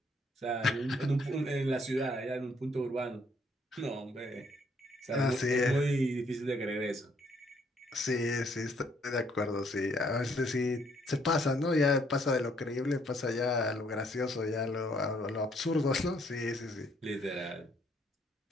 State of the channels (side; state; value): both; normal; correlation 0.67